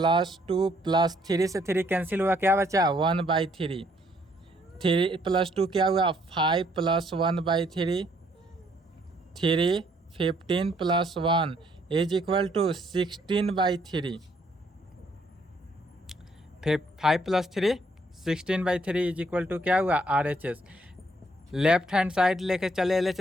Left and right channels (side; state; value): both; normal; correlation 0.68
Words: 2 प्लस 3 से 3 कैंसिल हुआ, क्या बचा? 1/3। 3 प्लस 2 क्या हुआ? 5 प्लस 1/3, 3 15 प्लस 1 इज इक्वल टू 16/3। 5 प्लस 3 16/3 इज इक्वल टू क्या हुआ? RHS। लेफ्ट हैंड साइड लेके चले